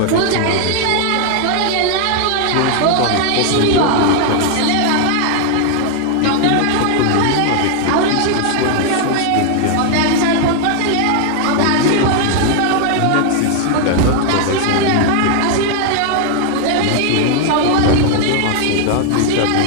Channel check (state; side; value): different; both; correlation 0.00